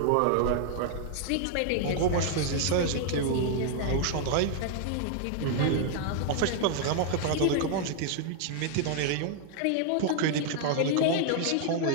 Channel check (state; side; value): different; both; correlation 0.00